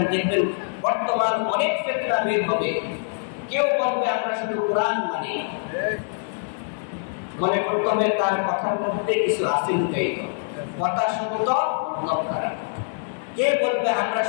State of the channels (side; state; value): right; silent; digital silence